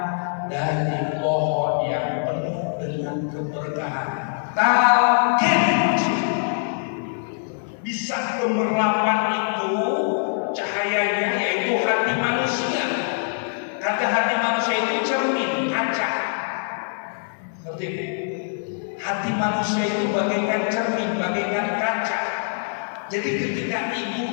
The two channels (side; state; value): right; silent; digital silence